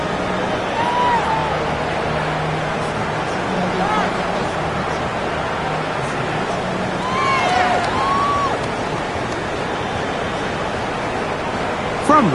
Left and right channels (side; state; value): both; identical; correlation 1.00